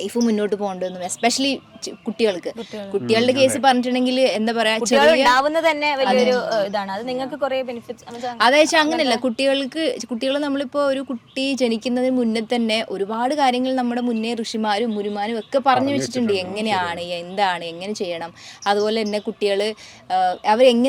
മുന്നോട്ട് പോകേണ്ടതെന്നും, എസ്പെഷ്യലി കുട്ടികളുടെ കേസ് പറഞ്ഞിട്ടുണ്ടെങ്കിൽ എന്താ പറയാ, തന്നെ വലിയൊരു ഇതാണ്. അത് നിങ്ങൾക്ക് കുറേ ബെനിഫിറ്റ്സ്. അതായത് അങ്ങനെയല്ല, കുട്ടികൾ നമ്മളിപ്പോൾ ഒരു കുട്ടി ജനിക്കുന്നതിന് മുന്നേ തന്നെ ഒരുപാട് കാര്യങ്ങൾ നമ്മുടെ മുന്നേ ഋഷിമാരും മുരുമാരും ഒക്കെ പറഞ്ഞു വെച്ചിട്ടുണ്ട്. എങ്ങനെയാണ്, എന്താണ്, എങ്ങനെ ചെയ്യണം, അതുപോലെ തന്നെ കുട്ടികൾ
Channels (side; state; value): both; identical; correlation 1.00